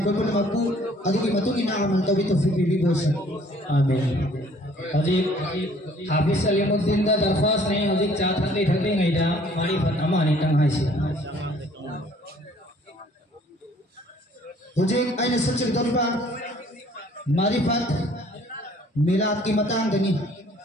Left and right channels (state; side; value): normal; both; correlation 0.57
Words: कोई पुणे मक्कू अदुगी मतुगी ना अमल तो भी तौफीक भी बोश आमीन। हजी हाफिज सलीमुद्दीन दा दरख्वास्त नहीं हजी चार थकली थकली गई दा मारी फतमा नहीं तंग है सी मुझे आइने सबसे दरबार मारिफत मिलाद की मतंग दनी